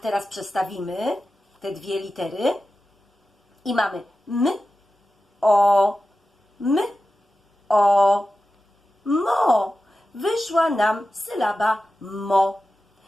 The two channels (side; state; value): both; normal; correlation 0.93